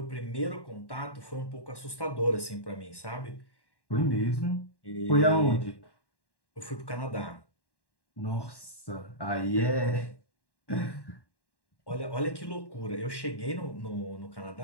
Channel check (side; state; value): right; late; 1.1 ms